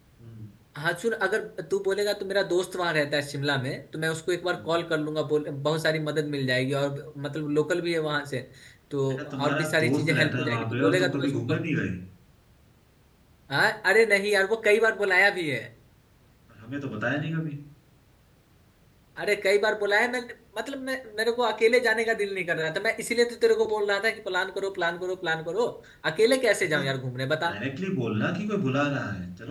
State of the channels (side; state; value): both; identical; correlation 1.00